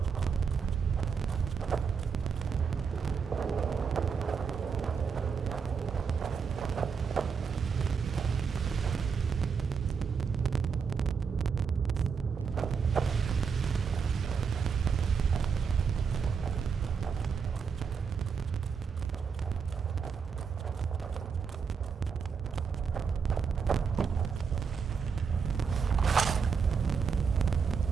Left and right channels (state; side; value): quieter; left; 6.0 dB